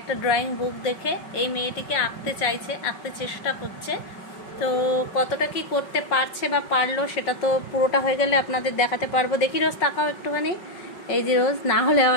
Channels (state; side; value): late; right; 5.4 ms